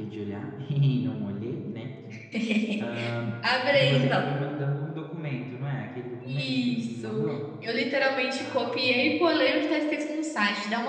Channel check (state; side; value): identical; both; correlation 1.00